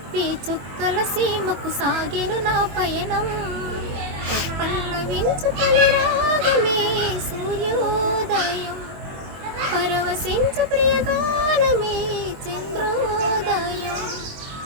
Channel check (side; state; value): left; late; 22 ms